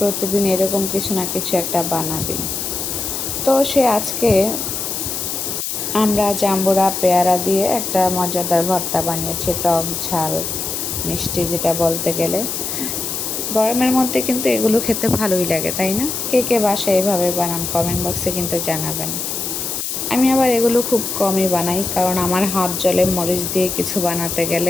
এরকম কিছু না কিছু একটা বানাবেই। তো সে আজকে আমরা জাম্বুরা পেয়ারা দিয়ে একটা মজাদার ভর্তা বানিয়েছি, টক ঝাল মিষ্টি যেটা বলতে গেলে। গরমের মধ্যে কিন্তু এগুলো খেতে ভালোই লাগে, তাই না? কে কে বাসায় এভাবে বানান কমেন্ট বক্সে কিন্তু জানাবেন। আমি আবার এগুলো খুব কমই বানাই, কারণ আমার হাত জ্বলে মরিচ দিয়ে কিছু বানাতে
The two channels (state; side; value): noise; left; hiss, 3 dB below the sound